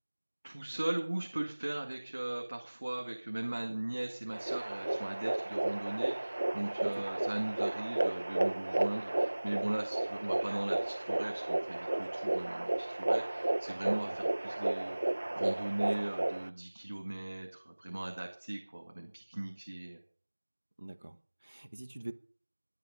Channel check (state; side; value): inverted; both; correlation -1.00